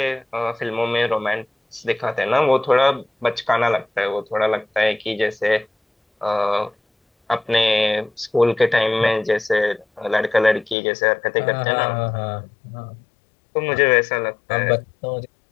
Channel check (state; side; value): drops out; right; at 10.8 s